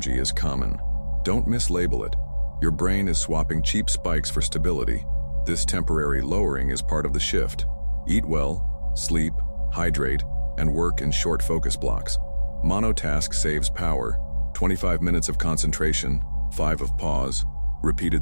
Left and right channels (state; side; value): inverted; both; correlation -1.00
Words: is common. Don't mislabel it. Your brain is swapping cheap spikes for stability. This temporary lowering is part of the shift. Eat well, sleep, hydrate, and work in short focus blocks. Monotask saves power. 25 minutes of concentration, 5 of pause,